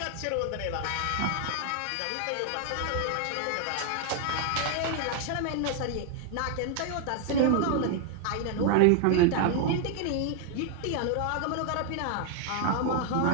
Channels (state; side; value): different; both; correlation 0.00